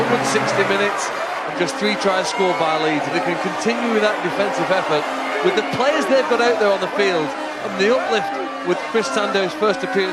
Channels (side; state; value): both; identical; correlation 1.00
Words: 160 minutes and just 3 tries scored by Leeds. If they can continue with that defensive effort, with the players they've got out there on the field, and the uplift with Chris Sandow's first